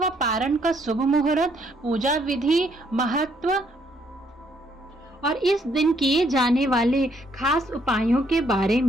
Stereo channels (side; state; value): both; normal; correlation 0.70